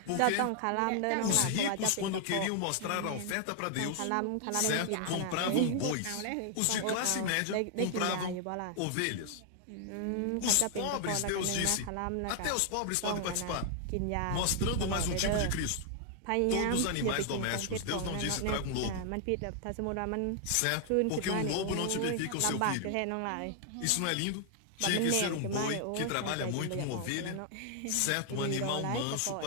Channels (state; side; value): different; both; correlation 0.00